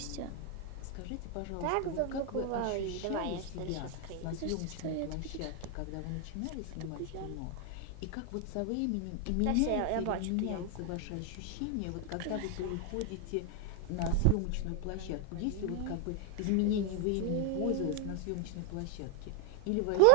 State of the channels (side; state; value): both; different; correlation 0.00